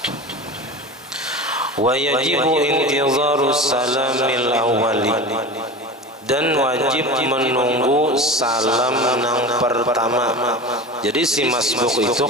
Wa yajibu intizaru salamil awwali, dan wajib menunggu salam nang pertama. Jadi si masbuk itu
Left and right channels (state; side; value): normal; both; correlation 0.31